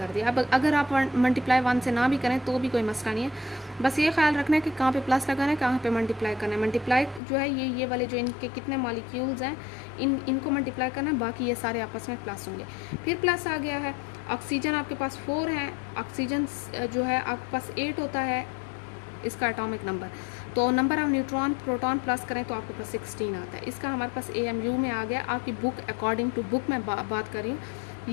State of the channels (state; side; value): drops out; right; at 7.2 s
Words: दिया। अब अगर आप मल्टीप्लाई 1 से ना भी करें तो भी कोई मसला नहीं है, बस ये ख्याल रखना है कि कहाँ पे प्लस लगाना है, कहाँ पे मल्टीप्लाई करना है। मल्टीप्लाई जो है ये वाले जो इनके कितने मॉलिक्यूल्स हैं इनको मल्टीप्लाई करना है, बाकी ये सारे आपस में प्लस होंगे। फिर प्लस आ गया है, ऑक्सीजन आपके पास 4 है, ऑक्सीजन जो है आपके पास 8 होता है इसका एटॉमिक नंबर। तो number of neutron proton plus करें तो आपके पास 16 आता है। इसका हमारे पास AMU में आ गया। आपकी बुक अकॉर्डिंग टू बुक मैं बात कर रही हूँ।